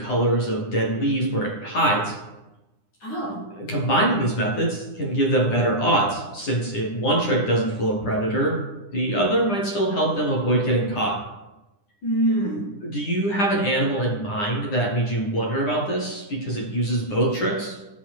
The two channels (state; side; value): late; right; 9.9 ms